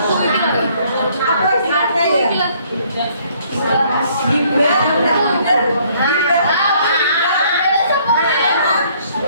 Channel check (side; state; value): both; inverted; correlation -0.63